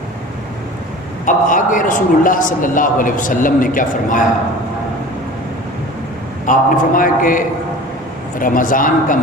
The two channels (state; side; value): normal; both; correlation 0.40